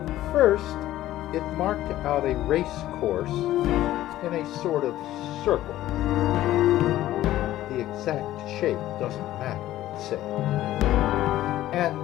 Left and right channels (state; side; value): quieter; right; 14.3 dB